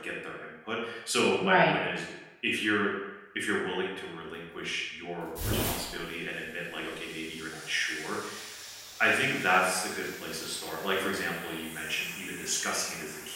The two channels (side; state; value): both; identical; correlation 1.00